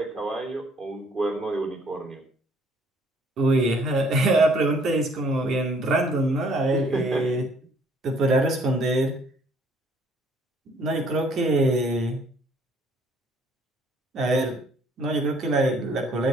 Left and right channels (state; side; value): normal; both; correlation 0.61